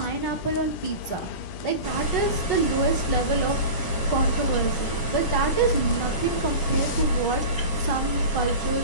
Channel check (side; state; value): right; late; 10 ms